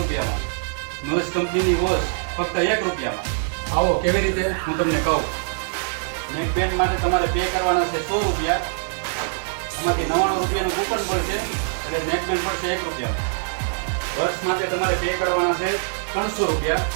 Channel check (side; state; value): left; silent; digital silence